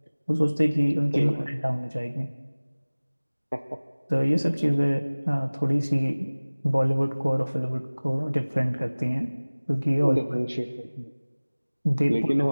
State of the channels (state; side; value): inverted; both; correlation -1.00